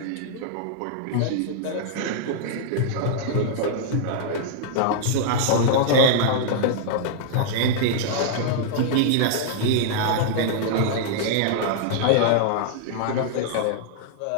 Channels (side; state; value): both; different; correlation -0.01